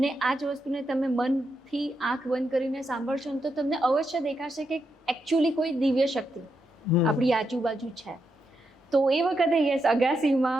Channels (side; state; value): both; normal; correlation 0.83